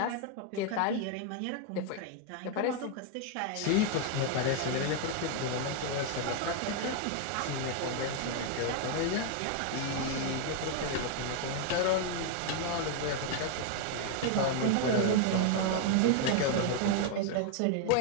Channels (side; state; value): both; different; correlation 0.00